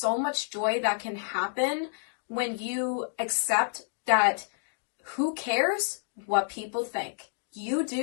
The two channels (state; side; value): silent; right; digital silence